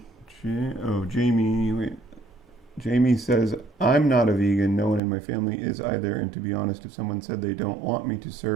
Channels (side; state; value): left; drops out; at 5.0 s